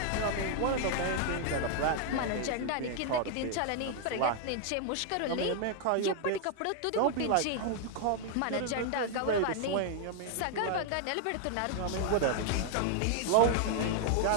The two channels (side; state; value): both; different; correlation 0.00